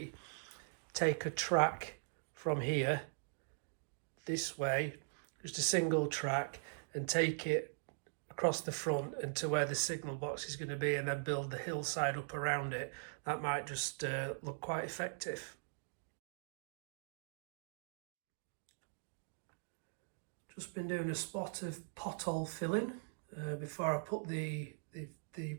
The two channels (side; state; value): left; silent; digital silence